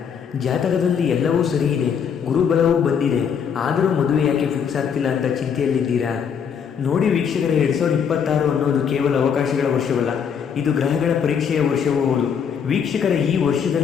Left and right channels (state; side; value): quieter; right; 7.2 dB